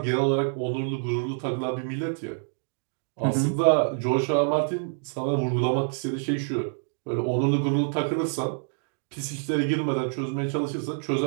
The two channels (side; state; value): left; silent; digital silence